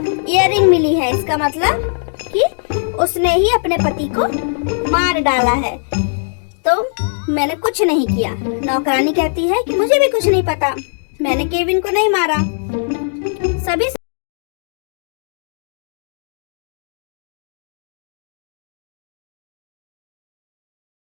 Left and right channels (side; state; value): right; silent; digital silence